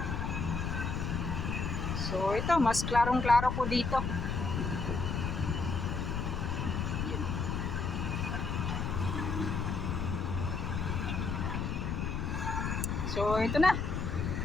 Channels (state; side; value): noise; left; rumble, 1 dB below the sound